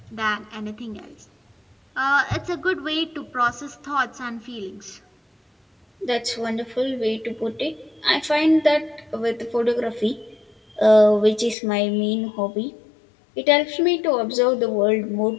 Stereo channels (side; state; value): right; drops out; at 11.6 s